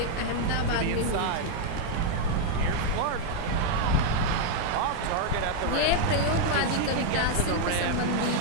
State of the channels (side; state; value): both; different; correlation 0.00